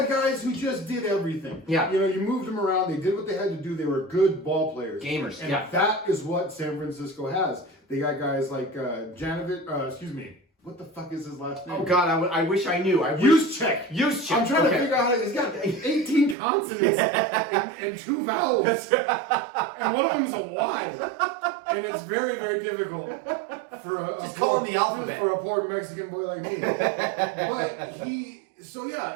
guys who just did everything. Yeah. You moved them around. They did what they had to do. They were good ball players. Gamers. And that is what San Francisco has. They got guys like what the fuck is his last name? Oh God, I wish I knew. Juszczyk. Juszczyk. I'm trying to figure out how he's got 18 consonants and 2 vowels, and one of them is a Y, and it's very, very difficult for just call him the alphabet for a poor Mexican boy like me. But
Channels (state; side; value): drops out; left; at 16.4 s